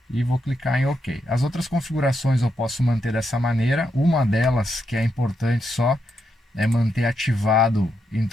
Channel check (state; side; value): normal; both; correlation 0.82